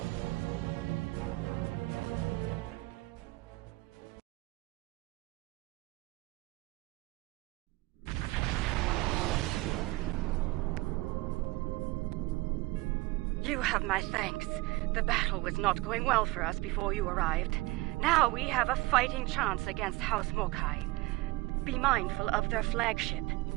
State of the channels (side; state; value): left; quieter; 20.9 dB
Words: You have my thanks. The battle was not going well for us before you arrived. Now we have a fighting chance against House Mokai. Be mindful of their flagship.